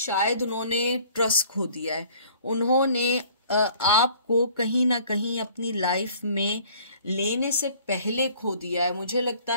उन्होंने ट्रस्ट खो दिया है, उन्होंने आपको कहीं ना कहीं अपनी लाइफ में लेने से पहले खो दिया है। मुझे लगता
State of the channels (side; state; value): both; inverted; correlation -0.54